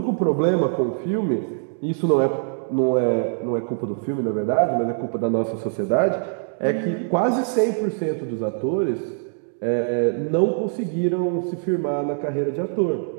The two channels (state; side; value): silent; left; digital silence